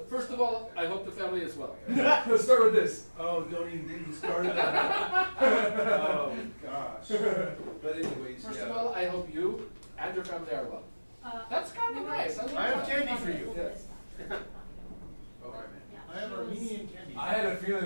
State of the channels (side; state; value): both; inverted; correlation -1.00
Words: First of all, I hope the family is well. Let's start with this. Oh, don't even get me started on that. Oh, gosh. But anyways, First of yeah. all, I hope you and your family are well. That's kind of nice. I I like have that. candy for you. Okay, man. I have Armenian candy. I had a feeling